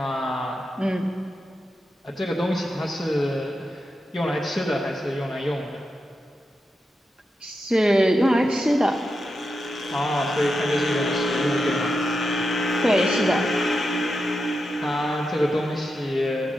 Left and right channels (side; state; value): both; normal; correlation 0.88